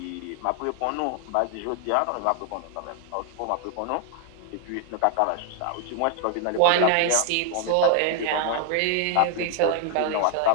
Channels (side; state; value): both; different; correlation 0.00